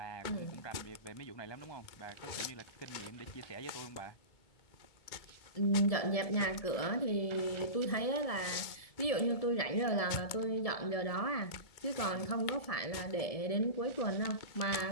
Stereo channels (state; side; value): late; right; 2.2 ms